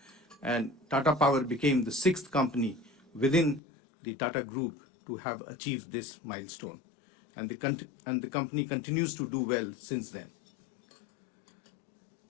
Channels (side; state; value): right; drops out; at 3.6 s